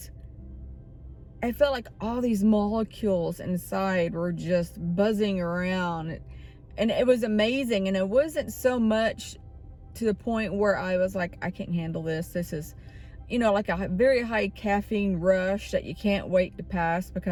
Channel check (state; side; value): identical; both; correlation 1.00